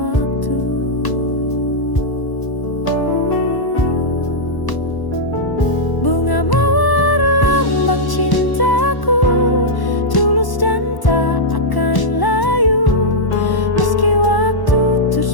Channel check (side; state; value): right; late; 1.0 ms